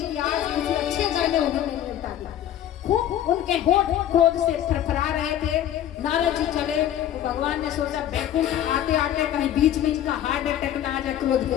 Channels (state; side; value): quieter; right; 11.2 dB